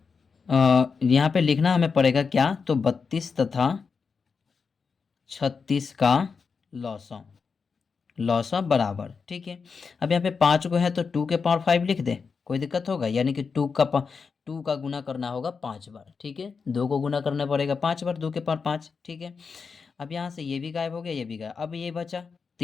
यहाँ पे लिखना हमें पड़ेगा क्या, तो 32 तथा 36 का लॉसा बराबर। ठीक है, अब यहाँ पे 5 को है तो 2 के पावर 5 लिख दे, कोई दिक्कत होगा, यानी कि 2 का गुना करना होगा 5 बार। ठीक है, 2 को गुना करना पड़ेगा 5 बार, 2 के पावर 5। ठीक है, अब यहाँ से ये भी गायब हो गया, ये भी गायब, अब ये बचा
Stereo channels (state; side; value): quieter; right; 5.3 dB